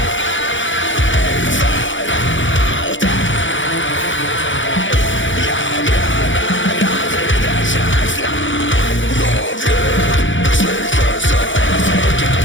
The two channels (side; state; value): right; late; 0.56 ms